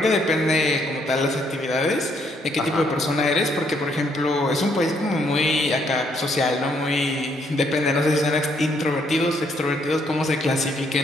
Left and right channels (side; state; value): both; normal; correlation 0.70